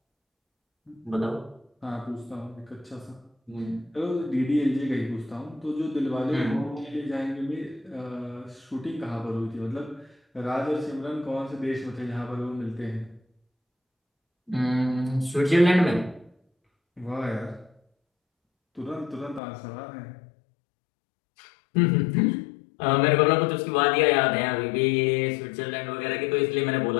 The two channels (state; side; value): drops out; right; at 19.4 s